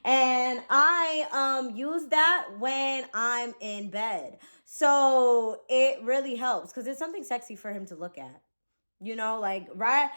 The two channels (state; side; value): inverted; both; correlation -1.00